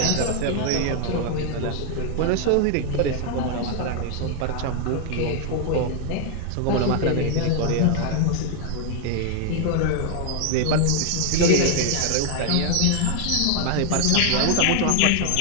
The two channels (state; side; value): different; both; correlation 0.00